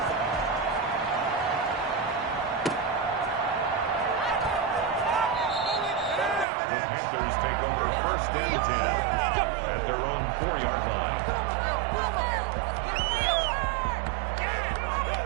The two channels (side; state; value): left; drops out; at 6.5 s